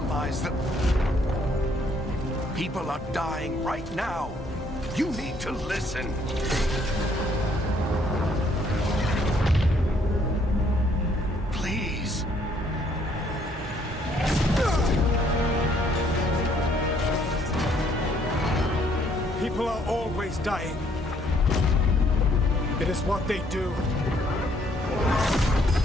the... People are dying right now. You need to listen. Please. People are always dying. It is what they do.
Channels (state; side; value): normal; both; correlation 0.66